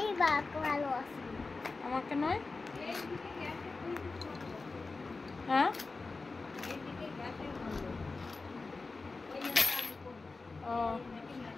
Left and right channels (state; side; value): quieter; right; 3.8 dB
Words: বাবাকে ভালোবাসি। আমাকে নয়? হ্যাঁ ও